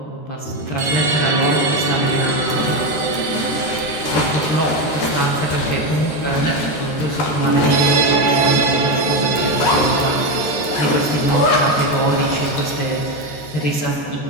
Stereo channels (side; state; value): right; late; 13 ms